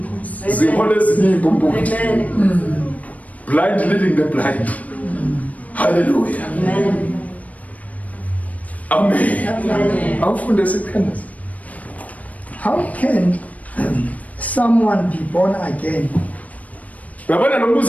Zihola ezinye impumputhi. Blind leading the blind. Hallelujah. Amen. Amen. Awufunde sikhandaza. How can someone be born again? Uyabona lo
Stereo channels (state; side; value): late; right; 0.070 ms